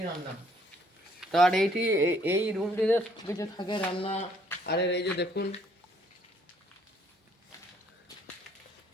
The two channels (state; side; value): normal; both; correlation 0.65